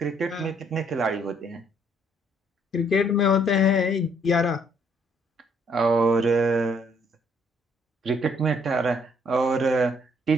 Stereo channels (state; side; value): normal; both; correlation 0.66